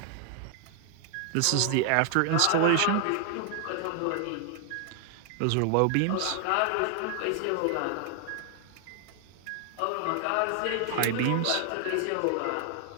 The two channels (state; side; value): different; both; correlation 0.00